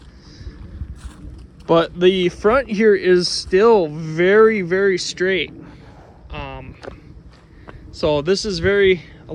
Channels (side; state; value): both; identical; correlation 1.00